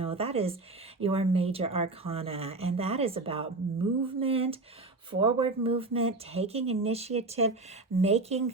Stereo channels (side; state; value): left; quieter; 3.3 dB